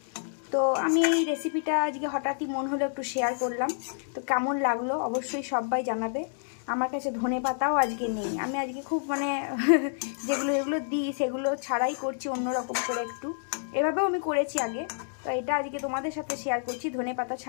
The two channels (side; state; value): right; silent; digital silence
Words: তো আমি এই রেসিপিটা আজকে হঠাৎই মন হলো একটু শেয়ার করলাম। তো কেমন লাগলো অবশ্যই সবাই জানাবে। আমার কাছে ধনেপাতাও আজকে নেই, আমি আজকে খুব যেগুলো দিই সেগুলো ছাড়াই করছি অন্যরকম করে একটু। এভাবেও আমি করেছি আগে, তো এটা আজকে তোমাদের সাথে শেয়ার করছি। ধনেপাতা